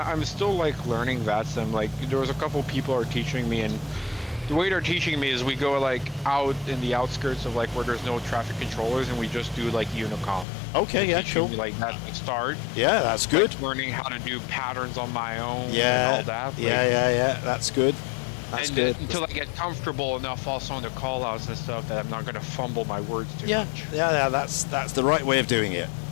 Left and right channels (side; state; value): right; drops out; at 10.5 s